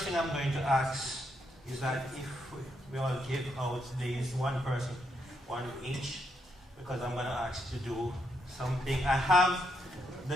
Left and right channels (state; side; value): normal; both; correlation 0.77